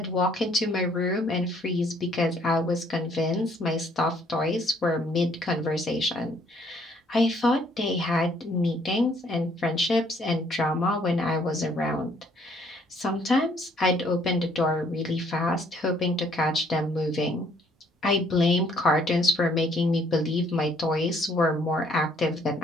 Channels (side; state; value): both; normal; correlation 0.64